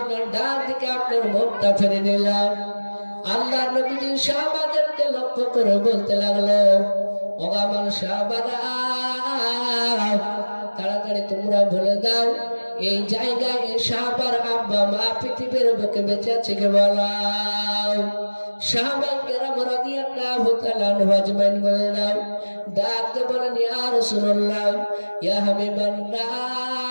ডান দিকে আপনার মুখটা ফিরে নিলাম। আল্লাহর নবীজি সাহাবাদেরকে লক্ষ্য করে বলতে লাগলো, ও আমার সাহাবারা তাড়াতাড়ি তোমরা বলে দাও এই জায়গায় সাহাবার আব্বা মা পৃথিবীর বুকে বেঁচে আছে কে বলাও। সাহাবায়ে কেরাম রাদিয়াল্লাহু তাআলা আনহু আজমাইন বলে দাও, ডাকতে বলেন ইয়া রাসূলুল্লাহ, ইয়া হাবিবাল্লাহ,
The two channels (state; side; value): inverted; both; correlation -1.00